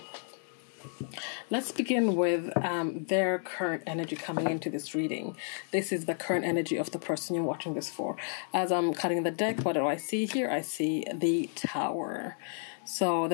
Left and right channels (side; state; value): right; silent; 57 dB below the other